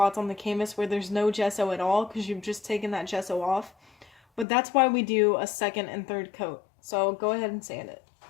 on the canvas where there's no gesso at all because you've just taken that gesso off. But that's why we do a second and third coat. So go ahead and sand it.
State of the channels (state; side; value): drops out; right; at 4.5 s